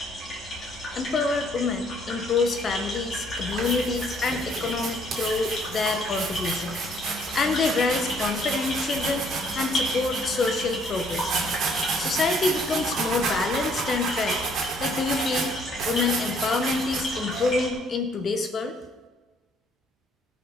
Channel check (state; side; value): normal; both; correlation 0.64